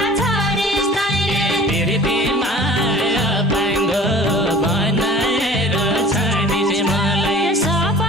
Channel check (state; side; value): normal; both; correlation 0.44